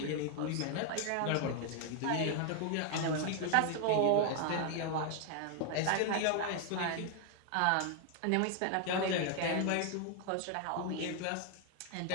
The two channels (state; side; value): different; both; correlation 0.00